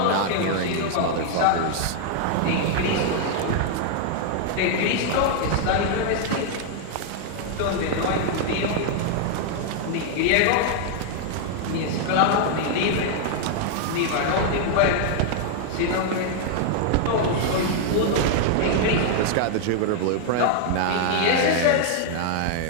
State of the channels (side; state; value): both; different; correlation 0.00